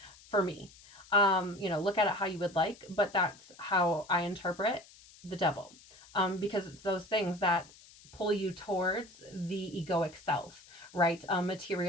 for me. Look at it how you would like, but that's how I interpret the devil. Because it's those things that pull you towards the egoic self, right?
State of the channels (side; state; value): left; noise; hiss, 23 dB below the sound